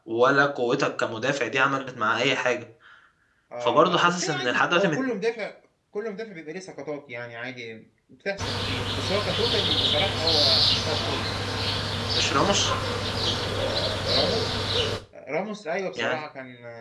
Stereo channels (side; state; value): both; identical; correlation 1.00